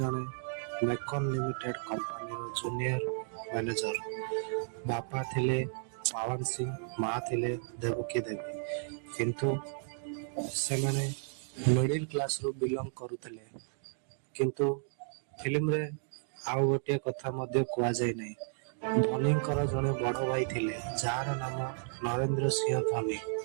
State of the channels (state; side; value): silent; left; digital silence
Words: मेकन लिमिटेड कंपनी रो जूनियर मैनेजर। बापा थिले पवन सिंह, माँ थिले देवकी देवी। किंतु से माने मिडिल क्लास रो बिलोंग करुथिले। किंतु फिल्म रे आउ गोटे कथा मध्य कुआ जाय नै। धोनीकर जने बड़ भाई थिले जार नाम नरेंद्र सिंह धोनी।